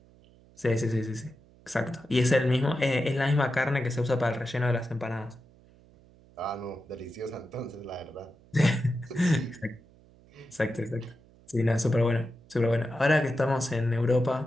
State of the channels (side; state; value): right; noise; hum, 27 dB below the sound